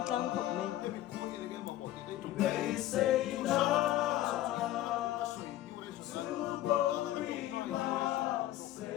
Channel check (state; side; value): quieter; right; 14.1 dB